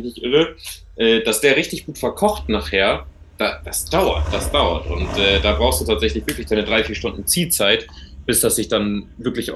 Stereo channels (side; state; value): both; identical; correlation 1.00